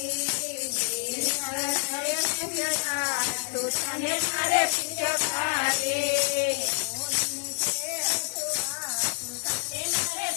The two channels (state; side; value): silent; right; digital silence